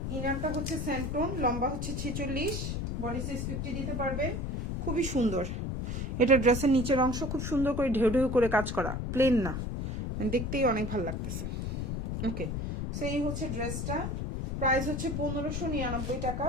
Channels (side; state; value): left; noise; rumble, 3 dB below the sound